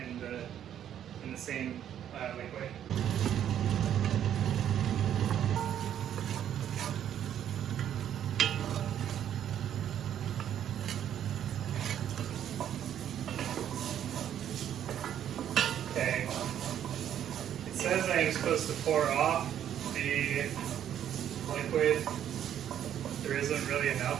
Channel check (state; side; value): quieter; left; 10.2 dB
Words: the same liquid. Okay. It says I am supposed to pour off the liquid. There isn't really